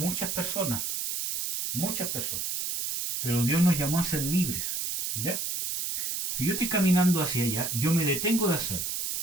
personas. Muchas personas. Pero Dios nos llamó a ser libres. ¿Ya? Si yo estoy caminando hacia allá, yo me detengo de hacerlo.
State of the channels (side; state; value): right; noise; hiss, 2 dB below the sound